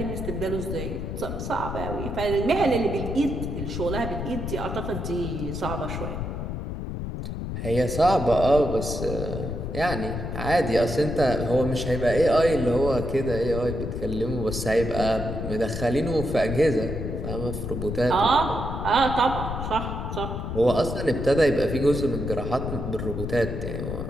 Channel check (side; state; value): left; noise; rumble, 5 dB below the sound